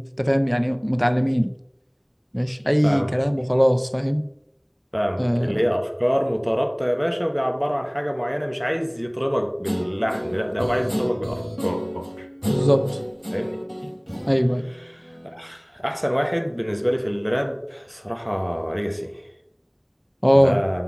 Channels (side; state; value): both; identical; correlation 1.00